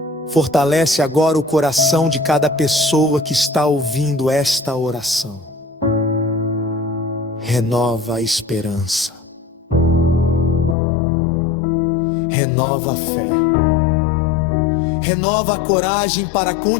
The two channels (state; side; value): drops out; right; at 10.8 s